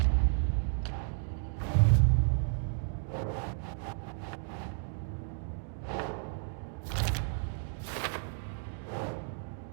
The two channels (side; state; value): left; silent; digital silence